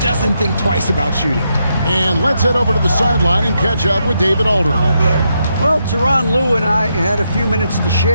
think twice about shooting. And let's head over to the sideline and catch up with David Aldridge. Well, Tyronn Lue and I had a few minutes to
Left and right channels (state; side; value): inverted; both; correlation -0.81